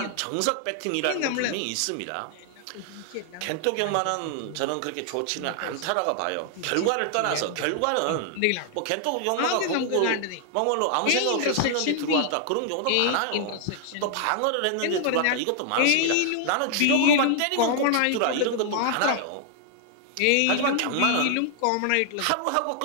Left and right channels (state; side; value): different; both; correlation 0.00